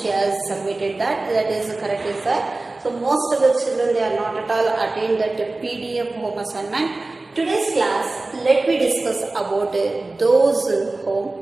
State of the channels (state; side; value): quieter; left; 3.2 dB